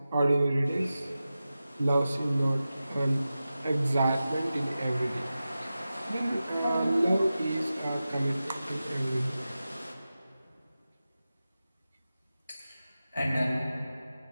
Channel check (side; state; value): both; inverted; correlation -0.94